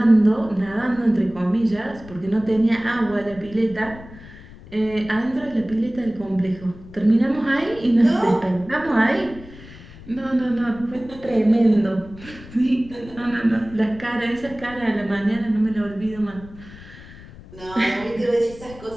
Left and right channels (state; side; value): noise; left; rumble, 18 dB below the sound